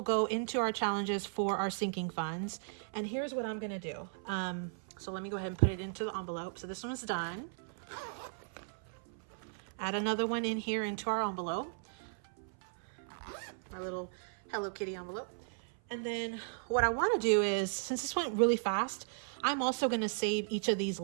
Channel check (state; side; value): silent; left; 54 dB below the other